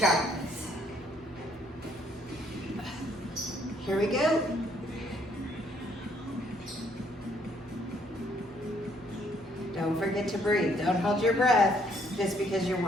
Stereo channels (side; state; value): both; normal; correlation 0.67